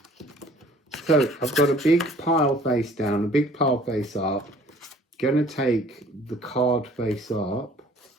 So I've got a big pile face down, a big pile face up. Gonna take the card face up.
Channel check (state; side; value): normal; both; correlation 0.54